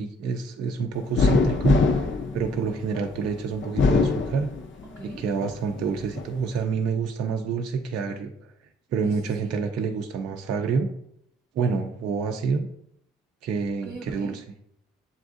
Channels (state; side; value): normal; both; correlation 0.61